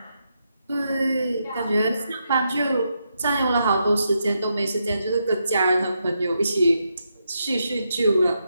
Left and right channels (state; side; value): inverted; both; correlation -0.83